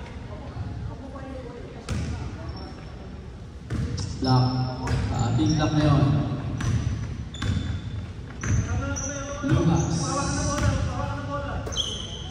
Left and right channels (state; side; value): identical; both; correlation 1.00